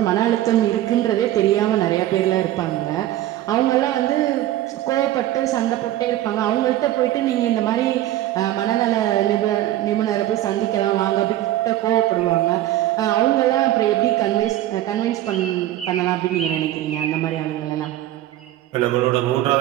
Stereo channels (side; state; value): left; quieter; 14.0 dB